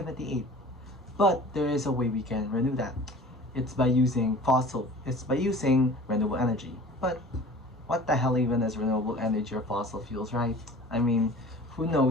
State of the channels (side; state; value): both; normal; correlation 0.43